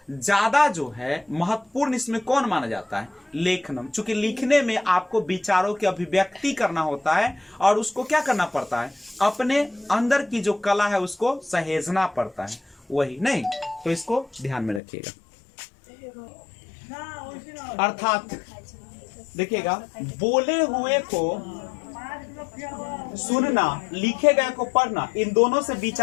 ज्यादा जो है महत्वपूर्ण इसमें कौन माना जाता है? लेखनम। चूंकि लिखने में आपको विचारों की अभिव्यक्ति करना होता है और उसको क्या करना पड़ता है? अपने अंदर की जो कला है उसको सहेजना पड़ता है, वही नहीं। तो इसको ध्यान में रखिएगा। अर्थात देखिएगा, बोले हुए को सुनना, लिखे गए को पढ़ना, इन दोनों से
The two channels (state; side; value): drops out; right; at 14.8 s